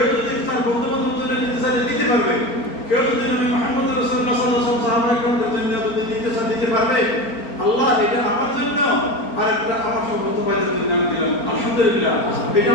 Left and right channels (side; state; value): right; late; 4.4 ms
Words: যদি তার বন্ধু বান্ধবের জন্য দিতে চায় দিতে পারবে, কেউ যদি নবী মুহাম্মদ রাসূলুল্লাহ সাল্লাল্লাহু আলাইহি ওয়াসাল্লাম সাহাবায়ে-কেরামের জন্য যদি দিতে চায় দিতে পারবে। আল্লাহ এটা আমার জন্য আর একটা আমার সমস্ত ভাইদের জন্য আমি দিলাম। আলহামদুলিল্লাহ। এটা